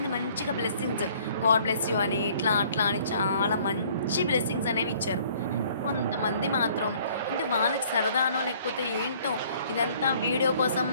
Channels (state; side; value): inverted; both; correlation -0.58